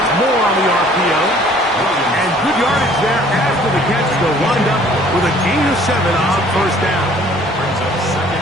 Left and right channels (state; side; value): normal; both; correlation 0.55